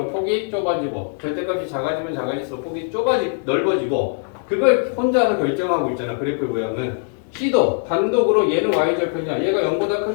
폭이 좁아지고 절대값이 작아지면 작아질수록 폭이 넓어지고 그걸 혼자서 결정하고 있잖아. 그래프의 모양은. C도 단독으로 얘는 y절편이야. 얘가 0보다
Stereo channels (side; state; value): right; silent; 59 dB below the other